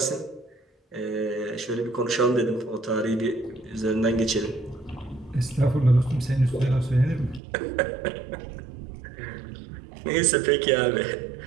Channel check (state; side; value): drops out; left; at 7.4 s